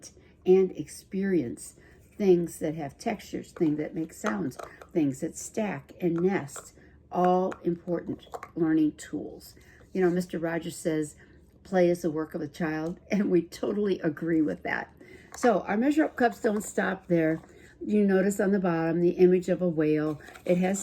and experience things that have textures, things that make sounds, things that stack and nest, all important learning tools. You know, Mr. Rogers says, play is the work of a child, and we totally agree with that. So our Measure Up cups don't stop there. You notice on the bottom the image of a whale. It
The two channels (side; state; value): both; identical; correlation 1.00